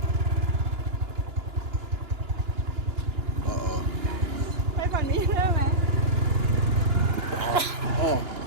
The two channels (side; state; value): left; late; 2.9 ms